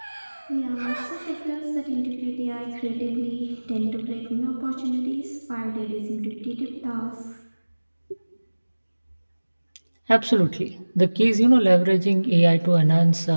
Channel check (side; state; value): both; inverted; correlation -1.00